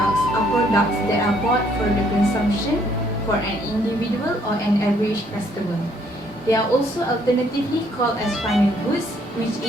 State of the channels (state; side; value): normal; both; correlation 0.66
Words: are products that are bought for the consumption for an individual or an average customer. They are also alternatively called as final goods, which